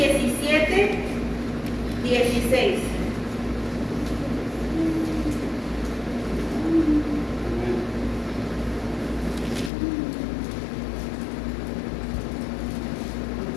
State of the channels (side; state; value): right; drops out; at 9.7 s